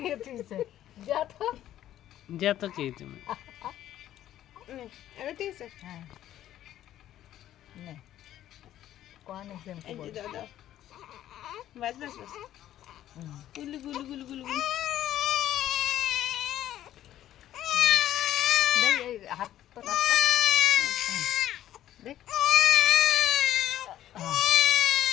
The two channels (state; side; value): quieter; right; 12.4 dB